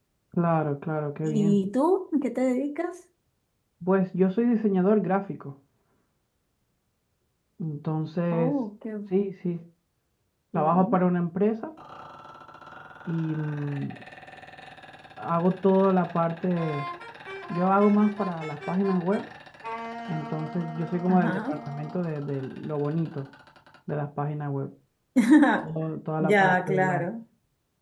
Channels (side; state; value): both; identical; correlation 1.00